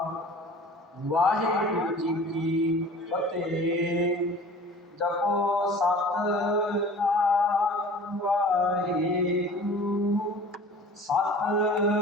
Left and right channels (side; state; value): both; normal; correlation 0.43